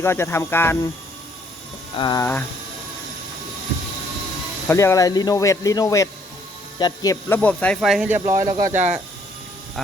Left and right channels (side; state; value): both; normal; correlation 0.65